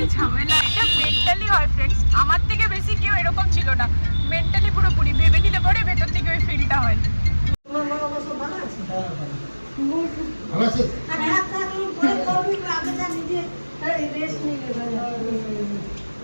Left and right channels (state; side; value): inverted; both; correlation -1.00